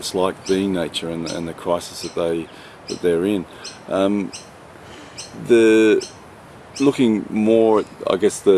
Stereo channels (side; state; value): both; identical; correlation 1.00